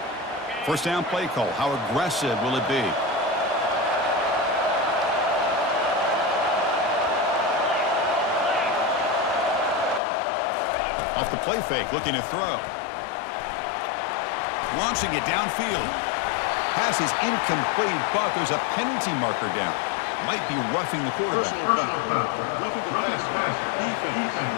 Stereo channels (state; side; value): drops out; right; at 10.0 s